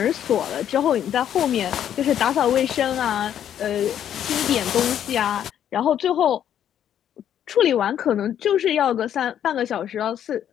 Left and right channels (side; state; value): right; quieter; 10.0 dB